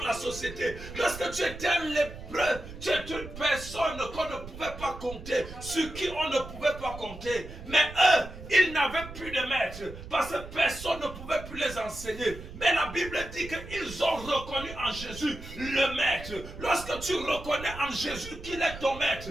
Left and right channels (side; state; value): right; noise; rumble, 13 dB below the sound